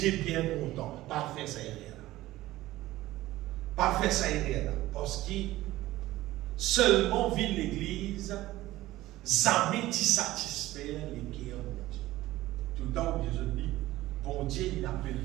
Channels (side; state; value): left; quieter; 16.5 dB